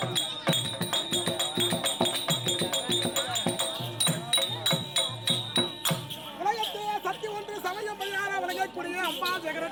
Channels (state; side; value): noise; left; hum, 29 dB below the sound